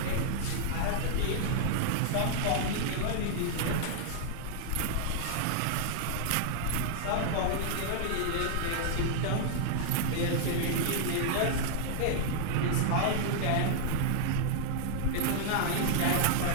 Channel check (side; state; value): both; different; correlation -0.01